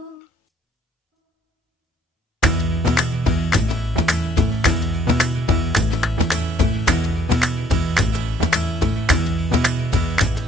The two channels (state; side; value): normal; both; correlation 0.65